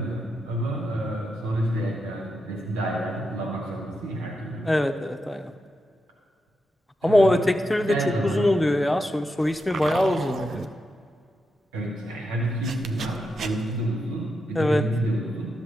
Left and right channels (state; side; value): normal; both; correlation 0.86